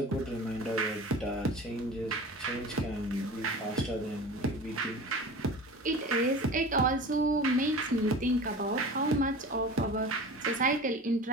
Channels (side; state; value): both; normal; correlation 0.36